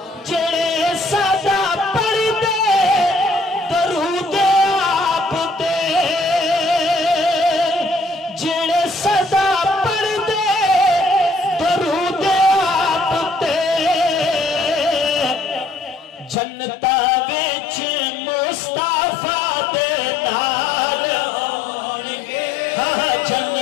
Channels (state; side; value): drops out; right; at 16.4 s